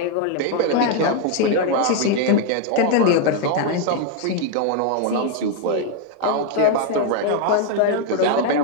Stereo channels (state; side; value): different; both; correlation 0.00